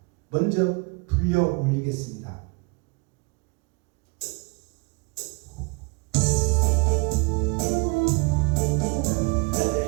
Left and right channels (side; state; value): left; quieter; 30.2 dB